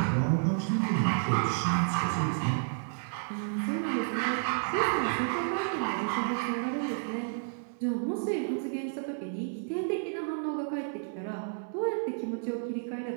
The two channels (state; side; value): silent; left; 57 dB below the other